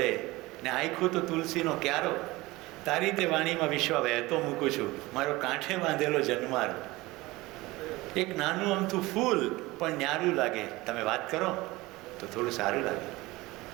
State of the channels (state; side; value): quieter; left; 20.5 dB